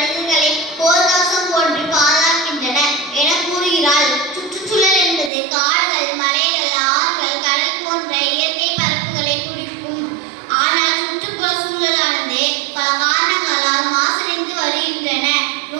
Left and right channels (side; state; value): left; drops out; at 5.3 s